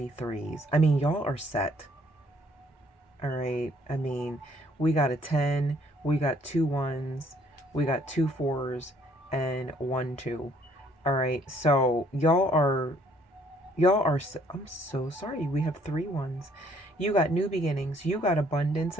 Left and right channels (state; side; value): normal; both; correlation 0.63